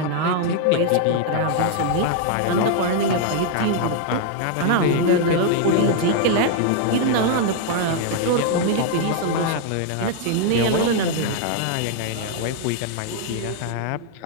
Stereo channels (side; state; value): both; different; correlation 0.00